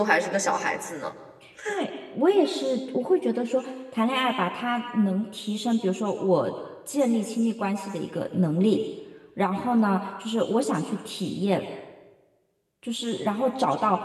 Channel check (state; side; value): identical; both; correlation 1.00